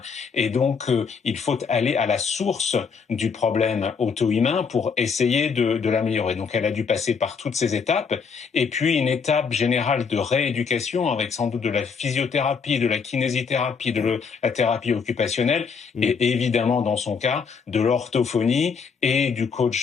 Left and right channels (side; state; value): right; quieter; 5.8 dB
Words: et donc il faut aller à la source du problème auto-immun pour essayer de l'améliorer. Donc elle a dû passer par toutes ces étapes, et puis une étape générale de rééducation avec sans doute de la physiothérapie, de la kinésithérapie, de la thérapie occupationnelle, et évidemment dans son cas, de l'orthophonie et du